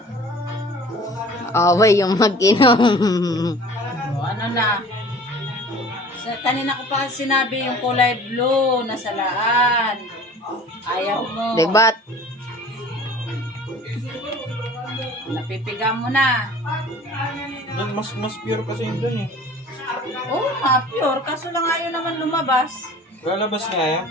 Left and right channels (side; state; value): both; normal; correlation 0.45